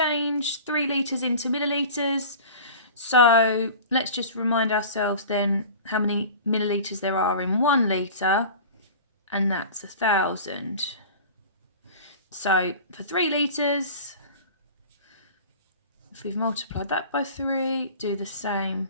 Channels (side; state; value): both; inverted; correlation -0.38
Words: 3 litres into millilitres. So let's just remind ourselves then how many millilitres there are in 1 litre, and that's 1,000. So for 3 litres, if we've multiplied that by 3, do the same,